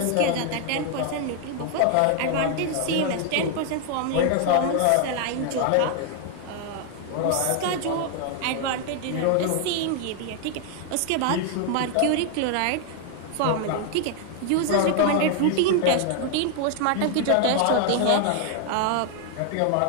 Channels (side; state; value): both; different; correlation 0.00